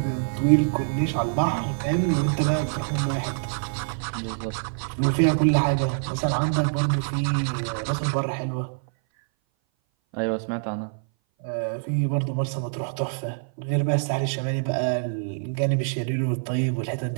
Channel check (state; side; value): silent; left; 58 dB below the other